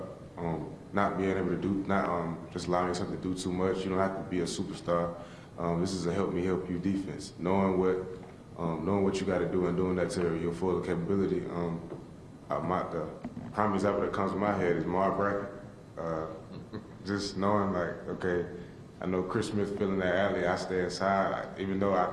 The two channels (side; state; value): both; identical; correlation 1.00